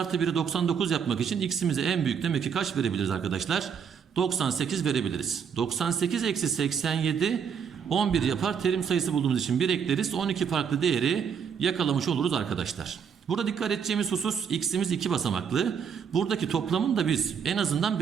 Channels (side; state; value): left; quieter; 7.1 dB